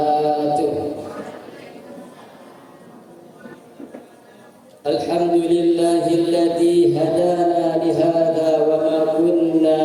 Alhamdulillahilladzi hadana lihada wa ma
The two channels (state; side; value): identical; both; correlation 1.00